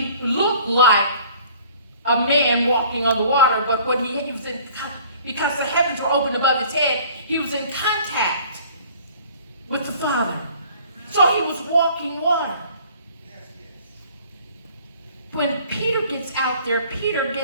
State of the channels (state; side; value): inverted; both; correlation -0.52